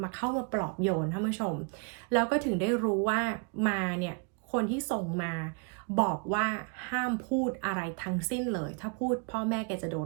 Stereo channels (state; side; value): quieter; left; 35.4 dB